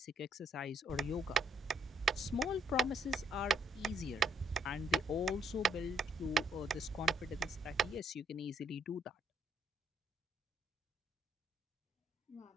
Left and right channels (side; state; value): both; normal; correlation 0.70